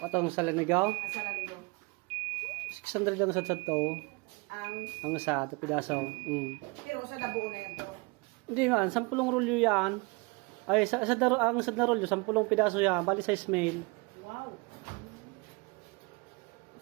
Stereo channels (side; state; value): left; quieter; 27.7 dB